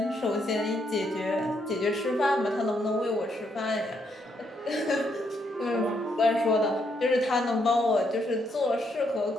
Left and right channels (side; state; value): both; normal; correlation 0.75